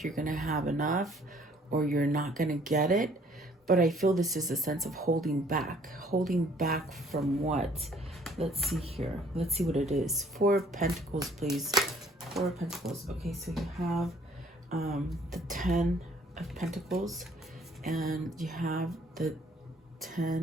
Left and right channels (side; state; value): both; normal; correlation 0.59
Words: you're gonna have enough, or you're not gonna get it. But I feel this is a sense of holding back from what? Let's see here. Let's see what it is. Four of Pentacles, please. Four of Pentacles. Okay, so you have the 10 of Pentacles, and you have the